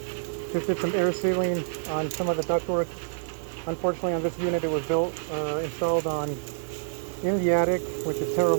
Just did some air sealing on some of the ductwork. Unfortunately, on this unit, it was installed in the attic, which is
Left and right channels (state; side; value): silent; left; digital silence